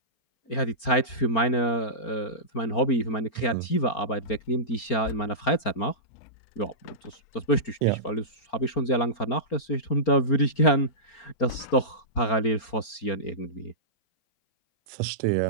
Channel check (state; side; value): late; right; 4.4 ms